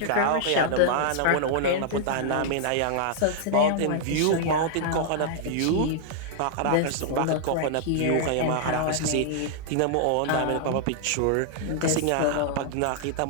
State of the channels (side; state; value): both; different; correlation -0.01